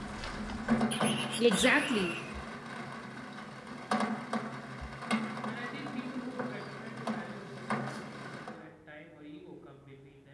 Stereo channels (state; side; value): identical; both; correlation 1.00